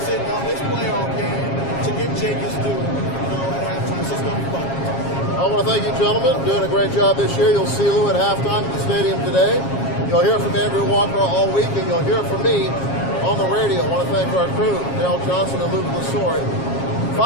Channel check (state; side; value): late; right; 7.3 ms